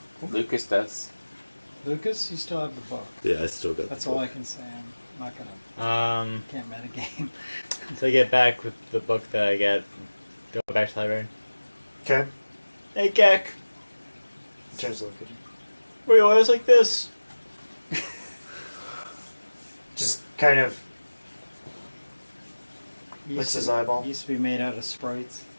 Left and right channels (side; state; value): both; inverted; correlation -1.00